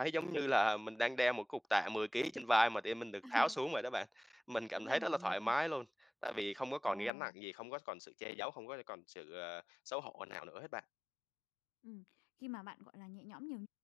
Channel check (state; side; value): drops out; right; at 7.1 s